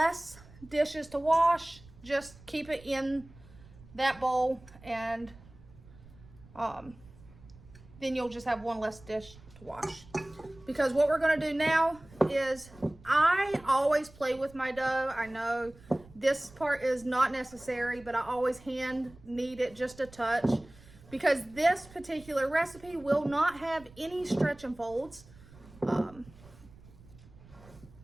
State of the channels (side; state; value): right; noise; rumble, 22 dB below the sound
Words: dishes to wash, just keep it in that bowl, and then you'll just have one less dish to wash. Because what we're gonna do now is, I always play with my dough. I know this part is not necessary, but I always hand knead it just a touch, because this particular recipe will not have any stretch and folds.